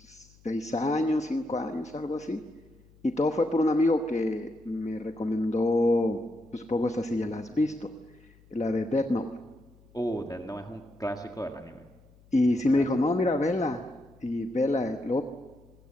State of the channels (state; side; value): noise; left; hum, 27 dB below the sound